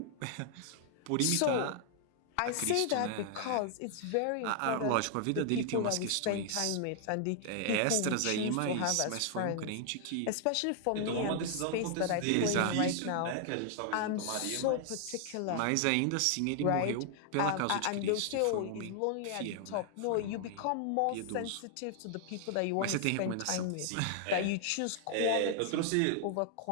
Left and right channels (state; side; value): different; both; correlation 0.00